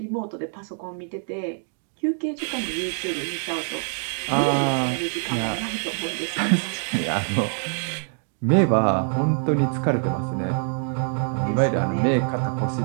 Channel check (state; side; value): silent; left; 56 dB below the other